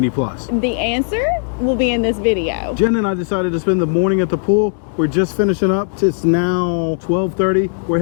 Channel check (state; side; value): silent; right; digital silence